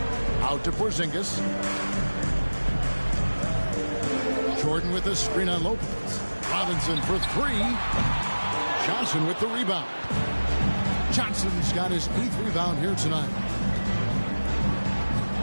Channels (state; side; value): inverted; both; correlation -1.00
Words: Out to Porzingis. Jordan with the screen on Lopez. Robinson for 3. Johnson with the rebound. Johnson's got his 8th rebound here tonight.